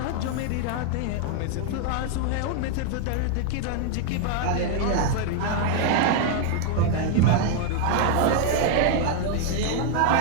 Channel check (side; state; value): both; different; correlation 0.00